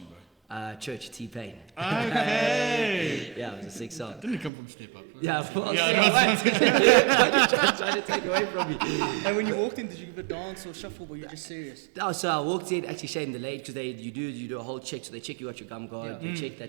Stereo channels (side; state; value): left; drops out; at 4.5 s